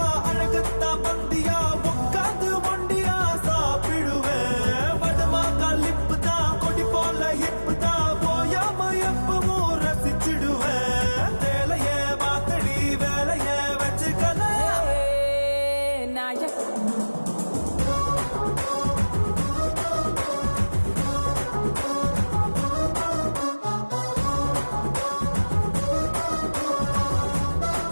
அழகத்தா பந்தியா உட்காந்து ஒண்டியா சாப்பிடுவேன் வடமாக்கா லிப்பு தான் கொடி போல ஹிப்பு தான் போயாம எப்பவும் ரசிச்சிடுவேன் வேலையே மாத்தடி வேலையே வச்சுக்கல நாயக்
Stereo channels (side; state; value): both; inverted; correlation -1.00